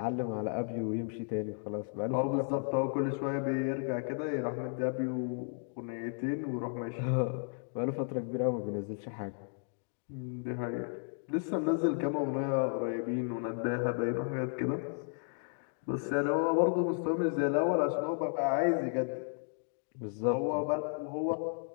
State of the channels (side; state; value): right; silent; 55 dB below the other